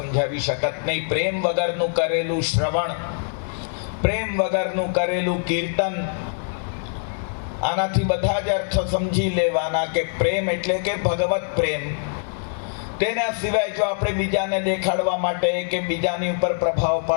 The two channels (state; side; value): silent; right; 63 dB below the other